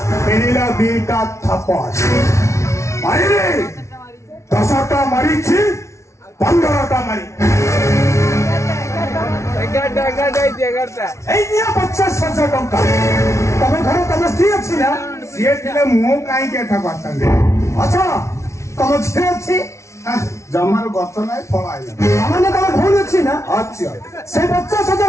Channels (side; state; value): right; late; 0.13 ms